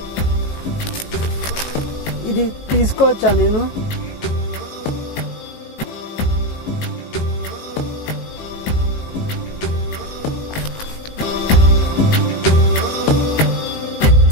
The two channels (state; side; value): late; right; 18 ms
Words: ఇది తీసుకోవచ్చా నేను?